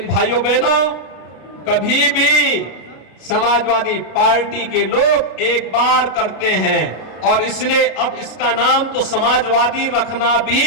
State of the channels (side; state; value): right; late; 33 ms